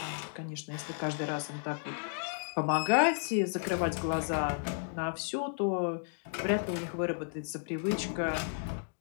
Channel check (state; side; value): silent; right; digital silence